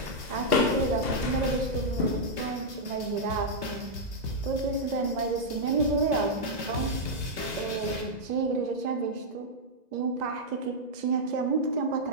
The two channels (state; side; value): late; left; 2.0 ms